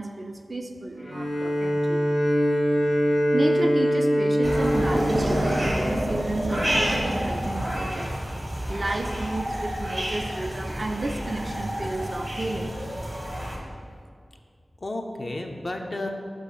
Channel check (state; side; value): normal; both; correlation 0.97